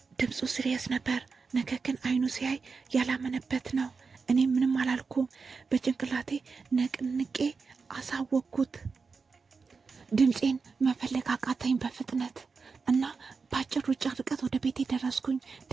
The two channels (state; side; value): quieter; left; 4.8 dB